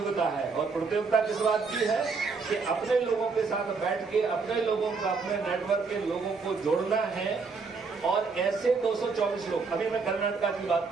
है। और प्रतियोगिता किस बात की है कि अपने लोगों के साथ बैठ के अपने लोगों का, अपने नेटवर्क के लोगों को जोड़ना है। और ऐसे 224 लोग, अभी मैं कर्नाटका की बात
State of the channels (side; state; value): left; quieter; 4.7 dB